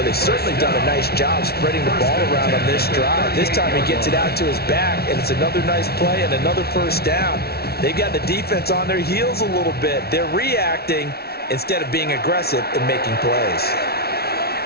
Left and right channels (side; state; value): right; late; 0.45 ms